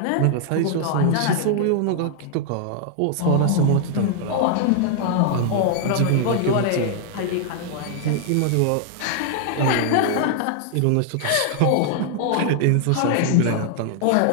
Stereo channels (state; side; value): different; both; correlation 0.00